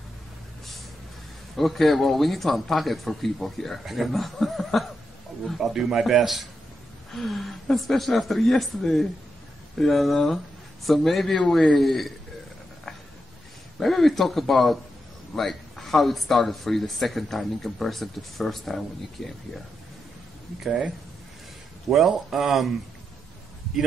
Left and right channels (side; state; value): both; normal; correlation 0.85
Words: Okay, well, we need to unpack it for people here. You know? I'll do my best. Especially after yesterday, you know. So maybe we talk about like how it started for you the second time in comparison to the first time when you came here. Okay. Well,